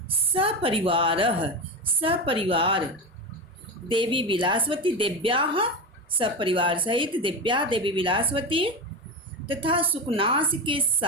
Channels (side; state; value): both; normal; correlation 0.18